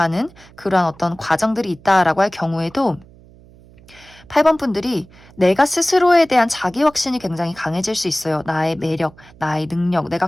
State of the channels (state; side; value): noise; right; hum, 24 dB below the sound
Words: 그러한 어떤 과정들이 있다라고 할 경우에도 8번 분들이 내가 스스로에 대한 자기 확신이 굉장히 강해질 수 있어요. 나의 매력, 나의 능력, 내가